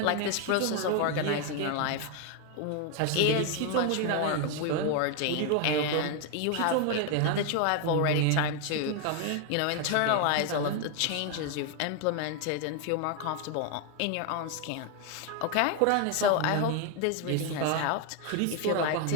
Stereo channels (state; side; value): different; both; correlation 0.01